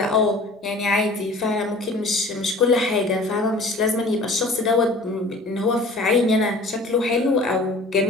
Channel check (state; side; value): normal; both; correlation 0.46